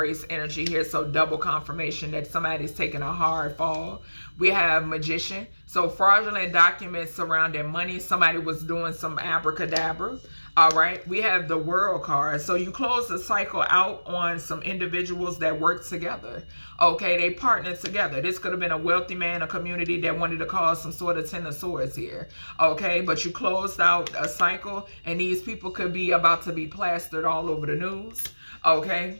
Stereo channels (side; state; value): both; inverted; correlation -1.00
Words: energy here. So double confirmation that somebody's taking a hard fall. We have magician. So fraudulent documents surrounding money. Somebody was doing some abracadabra. All right. We have the world card. So you close the cycle out on some individuals that work together. Okay. They partnered together. This could have been a wealthy man, a community that wanted to cause some sort of 10 of swords here. Okay. But you closed out a cycle and these people could be about to be plastered all over the news.